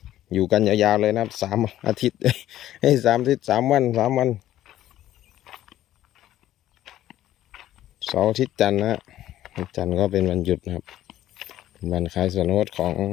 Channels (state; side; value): quieter; right; 13.1 dB